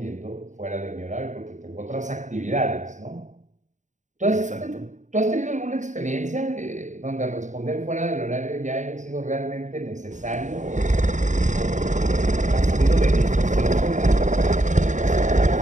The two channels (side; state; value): left; late; 0.36 ms